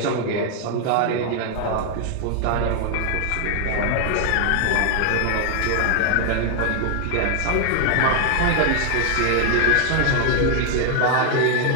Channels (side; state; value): both; different; correlation 0.00